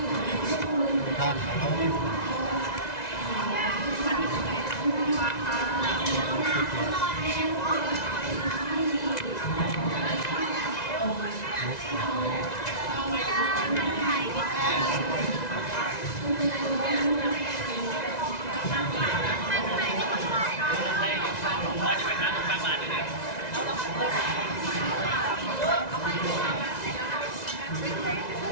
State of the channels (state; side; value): late; right; 1.9 ms